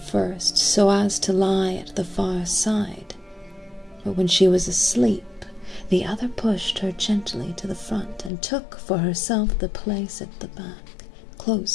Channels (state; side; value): drops out; right; at 8.3 s